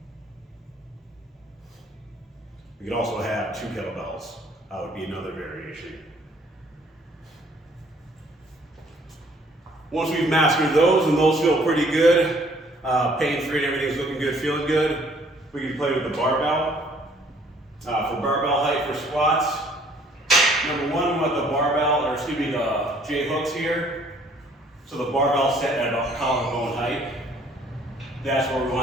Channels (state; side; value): normal; both; correlation 0.60